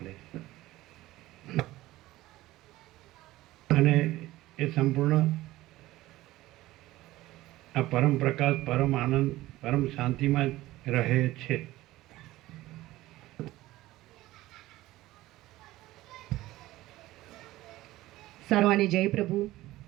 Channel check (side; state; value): left; quieter; 17.0 dB